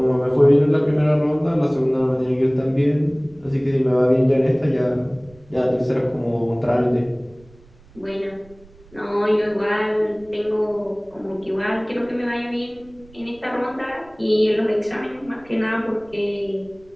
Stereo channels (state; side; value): noise; right; rumble, 26 dB below the sound